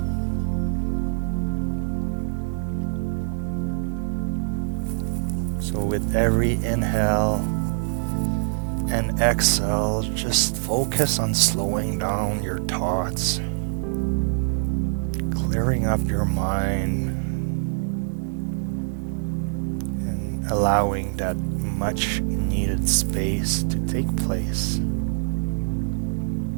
So with every inhale and exhale, just focus on slowing down your thoughts, clearing up your mind, and allowing that much needed space to take place.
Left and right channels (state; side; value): silent; left; digital silence